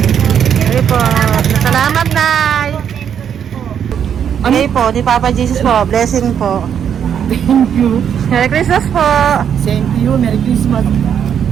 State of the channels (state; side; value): quieter; left; 8.4 dB